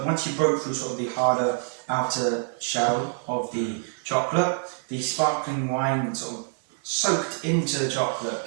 once you broke through sort of the harder outer shell of the chocolate, the sparkling wine sort of soaked into the chocolate,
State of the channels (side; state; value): left; silent; 56 dB below the other